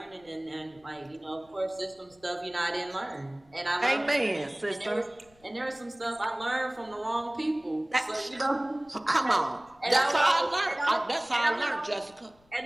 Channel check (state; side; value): noise; left; rumble, 30 dB below the sound